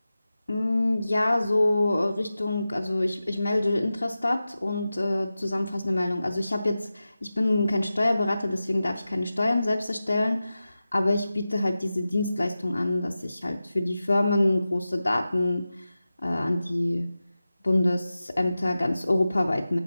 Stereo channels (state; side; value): inverted; both; correlation -0.94